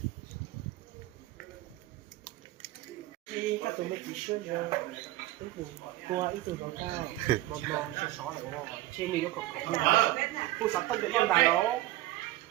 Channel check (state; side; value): quieter; left; 16.2 dB